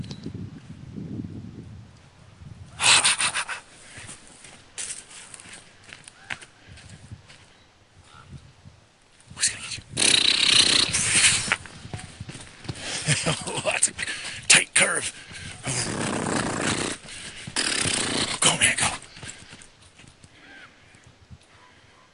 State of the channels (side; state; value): both; identical; correlation 1.00